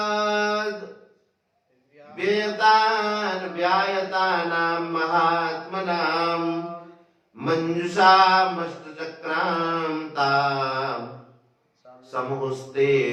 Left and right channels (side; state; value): both; identical; correlation 1.00